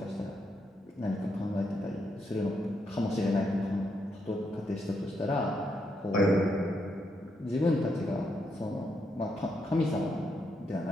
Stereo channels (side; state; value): both; normal; correlation 0.79